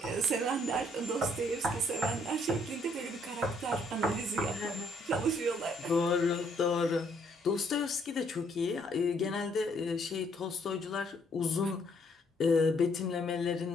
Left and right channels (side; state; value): both; normal; correlation 0.67